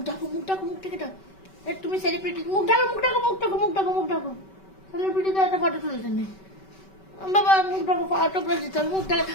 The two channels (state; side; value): late; right; 5.2 ms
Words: ঢাকো মুখ ঢাকো মুখ থেকে ঢাকো তুমি সেলিব্রিটি মুখ ঢাকো মুখ ঢাকো মুখ ঢাকো মুখ ঢাকো মুখ ঢাকো সেলিব্রিটিতে একটা ফটো তুলতেন বাবা মুখ ঢাকো ফটো প্রেস দিতে হবে মুখ ঢাকা